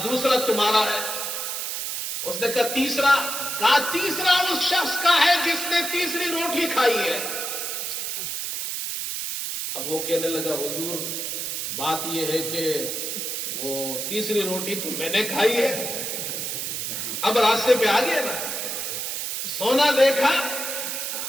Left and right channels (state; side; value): noise; right; hiss, 3 dB below the sound